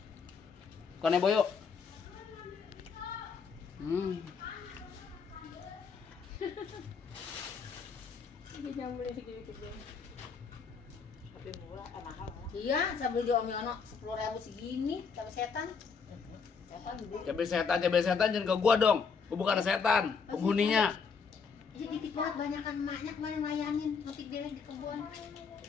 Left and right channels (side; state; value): right; quieter; 5.7 dB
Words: Kone boyo. Ini jamurnya segini-segini. Tapi murah, mahal. Iya, saya beli di Om Yono 10.000 segini, sama setan. Setan dulu. Cabai setan jangan ke gua dong. Gua bukan setan, penghuninya. Ini dikit banget, banyakan emaknya kemarin layanin, nanti dia di kebun.